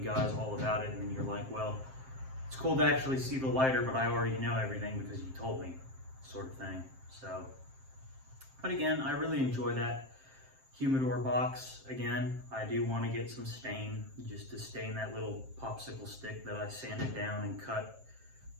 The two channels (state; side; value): late; left; 7.6 ms